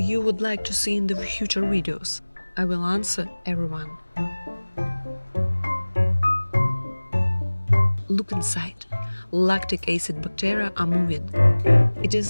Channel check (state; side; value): inverted; both; correlation -1.00